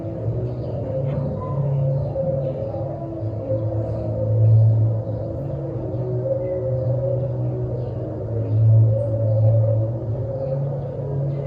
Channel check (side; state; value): both; identical; correlation 1.00